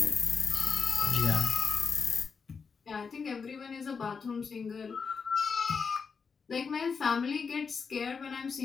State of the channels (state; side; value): quieter; right; 5.5 dB